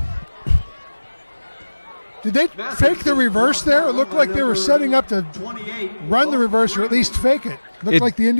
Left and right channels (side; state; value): both; inverted; correlation -1.00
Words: Did they fake the reverse there? It looked like they were setting up to run the reverse or at least fake it. Looked like the